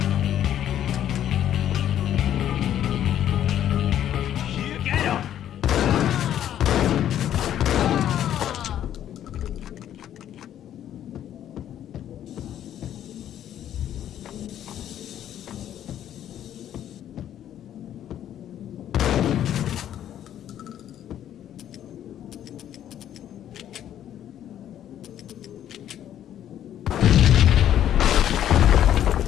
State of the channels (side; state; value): right; quieter; 10.9 dB